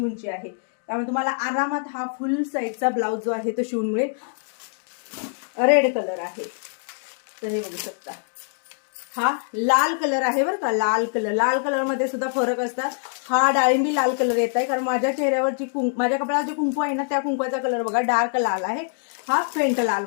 आहे, त्यामुळे तुम्हाला आरामात हा फुल साईजचा ब्लाउज जो आहे तो शिवून मिळेल। रेड कलर आहे, तर हे बघू शकता। हा लाल कलर आहे बरं का, लाल कलर। लाल कलर मध्ये सुद्धा फरक असतात। हा डाळिंबी लाल कलर येत आहे, कारण माझ्या चेहऱ्यावरची माझ्या कपड्यावर जे कुंकू आहे ना त्या कुंकवाचा कलर बघा डार्क लाल आहे। हा फेंट लाल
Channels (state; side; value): silent; right; digital silence